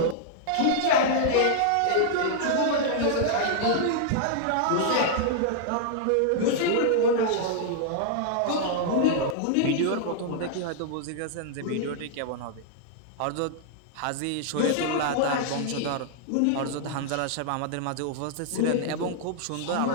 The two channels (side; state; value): both; different; correlation -0.01